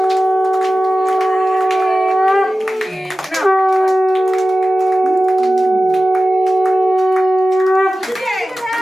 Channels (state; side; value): normal; both; correlation 0.95